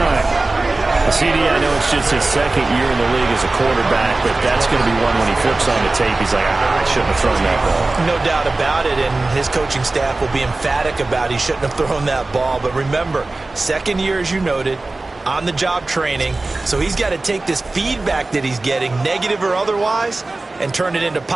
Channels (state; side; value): quieter; left; 3.2 dB